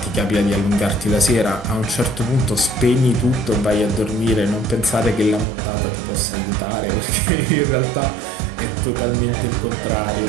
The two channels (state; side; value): drops out; left; at 5.5 s